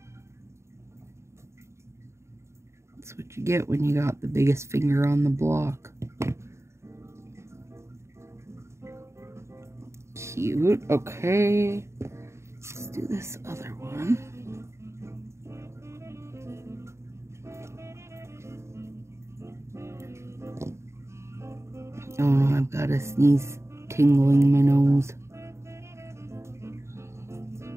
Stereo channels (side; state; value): left; late; 0.13 ms